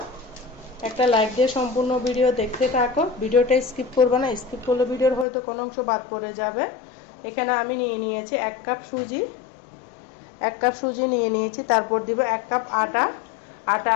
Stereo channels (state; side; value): drops out; right; at 5.2 s